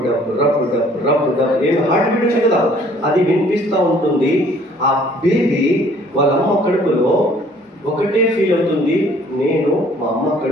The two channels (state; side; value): normal; both; correlation 0.57